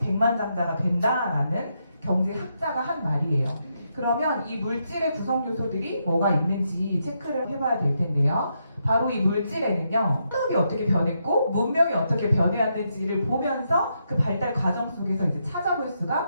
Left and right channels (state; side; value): inverted; both; correlation -0.81